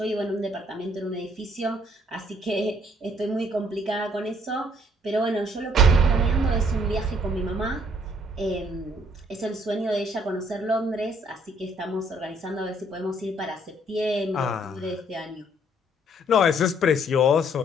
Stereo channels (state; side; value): normal; both; correlation 0.64